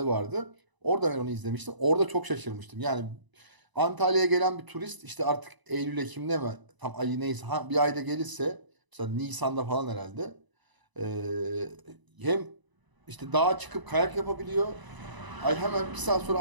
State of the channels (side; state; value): left; late; 1.0 ms